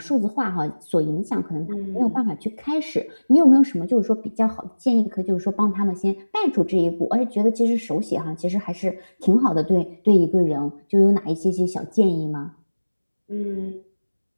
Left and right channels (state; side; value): inverted; both; correlation -1.00